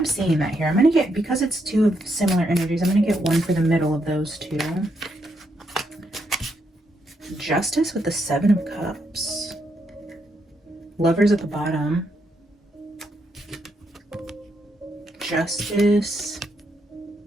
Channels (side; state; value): both; normal; correlation 0.78